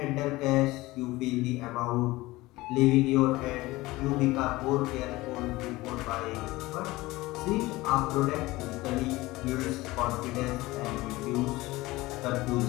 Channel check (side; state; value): right; quieter; 19.7 dB